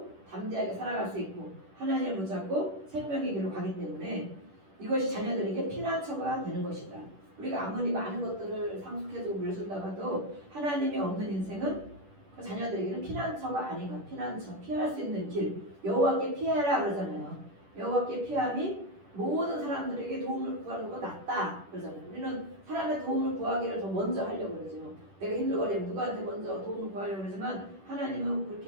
담대하게 살아갈 수 있고 하나님을 붙잡고 생명의 길로 가기 때문에 이것이 자녀들에게 피난처가 되는 것이다. 우리가 아무리 많은 것들을 상속해주고 물려준다고 해도 하나님이 없는 인생은 그 자녀들에게는 피난처가 아닌가. 피난처, 피할 수 있는 길. 여호와께 피하라 그러잖아요. 여호와께 피함이 모든 사람들에게 도움을 구하는 것보다 낫다 그러잖아요. 우리는 사람의 도움을 구하기를 더 먼저 하려고 그러죠. 내가 힘들거리면 누구한테 먼저 도움을 구하려고 그러지만 하나님은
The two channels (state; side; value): late; left; 10 ms